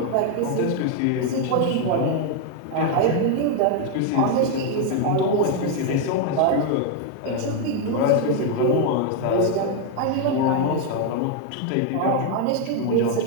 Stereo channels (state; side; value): different; both; correlation 0.01